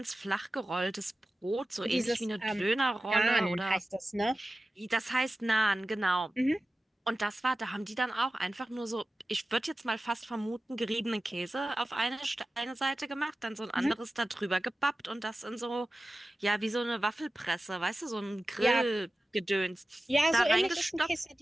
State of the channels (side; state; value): both; normal; correlation 0.95